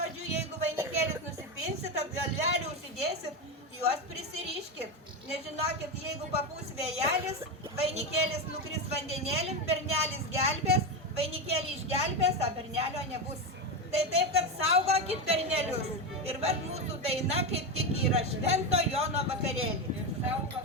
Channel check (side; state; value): both; normal; correlation 0.14